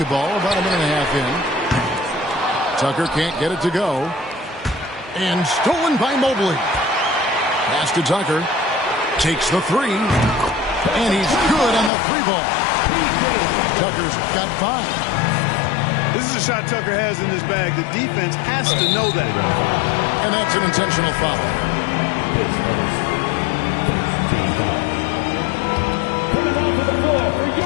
about a minute and a half in. Tucker can't get it to go. And stolen by Mobley. Pass to Tucker. Takes the three. And he's good on the three ball. Tucker's got 5. This is a shot Tucker has in his bag. The defense has to know that. And that's an intentional foul. Coming onto the floor for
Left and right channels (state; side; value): drops out; right; at 11.9 s